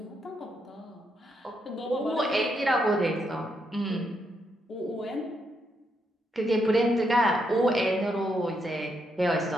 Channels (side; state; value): both; normal; correlation 0.79